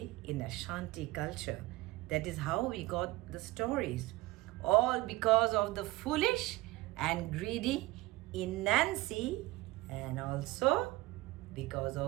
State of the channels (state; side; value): quieter; left; 19.4 dB